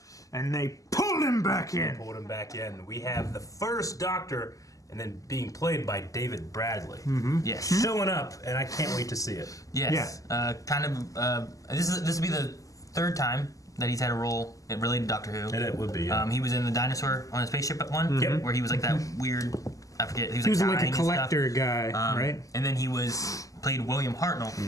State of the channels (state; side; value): late; right; 0.16 ms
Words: and they pulled him back in. Pulled him back in. We have the first Doctor, and then being played by David Bradley. Mm-hmm. Yes. Showing up, and I can't wait to see it. Yes. Yeah. This will be the third time that he's had a role related to Doctor Who. And it would be. Yeah. He was in the dinosaur on a spaceship at one, Yep. where he was like that weird. I forget. He was like a dying and collector stuff. guy, right? And then he played William Hartnell